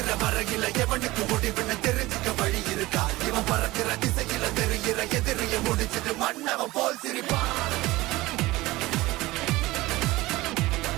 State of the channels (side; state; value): left; quieter; 19.4 dB